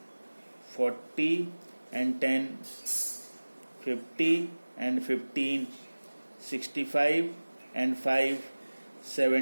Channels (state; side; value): inverted; both; correlation -1.00